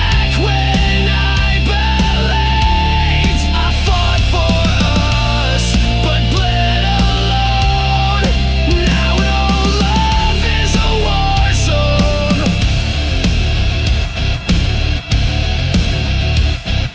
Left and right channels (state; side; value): identical; both; correlation 1.00